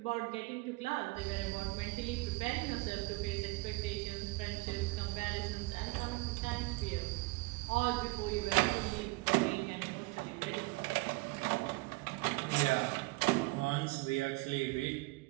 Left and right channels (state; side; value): quieter; left; 24.0 dB